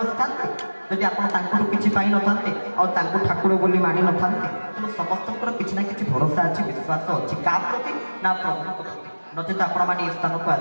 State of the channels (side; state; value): both; inverted; correlation -1.00